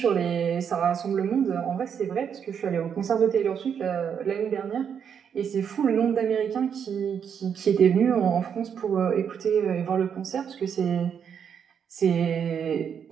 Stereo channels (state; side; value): quieter; left; 7.6 dB